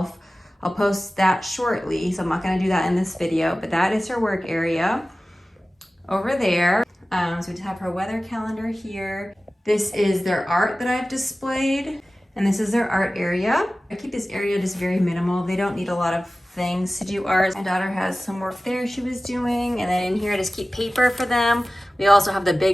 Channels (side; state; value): both; normal; correlation 0.97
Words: I'll post that shortly, so I'm not gonna do that in this video, but that is her work area over there. So we have her weather calendar here. This is their art that I've displayed, and this is their art area. I keep this area just very minimal. They don't need a lot of things to do art. My daughter has some work there she was doing, and then in here I just keep paper for them. We also have the